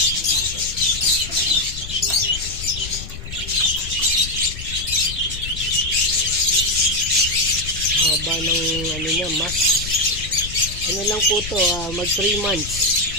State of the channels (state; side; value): noise; left; rumble, 10 dB below the sound